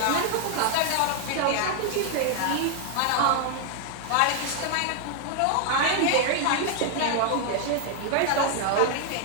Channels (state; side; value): different; both; correlation 0.00